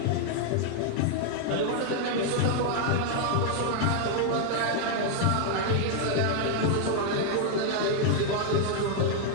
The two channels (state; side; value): different; both; correlation 0.00